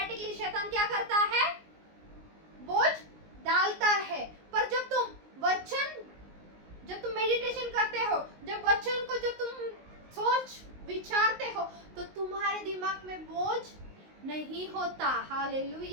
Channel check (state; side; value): late; left; 19 ms